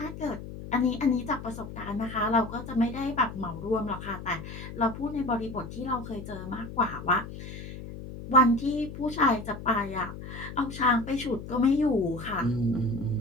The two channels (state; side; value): noise; left; hum, 11 dB below the sound